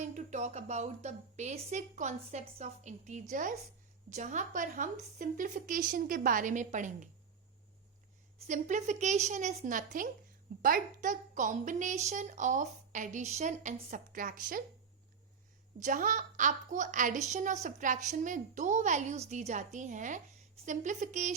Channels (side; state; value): left; quieter; 6.1 dB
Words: to talk about the basic concepts of integers, जहां पर हम simplification के बारे में पढ़ेंगे. Simplification is nothing but the combination of addition and subtraction. जहां आपको addition और subtraction में दो values दी जाती हैं,